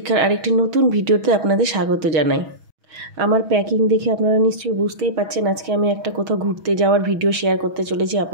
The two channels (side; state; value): left; late; 6.2 ms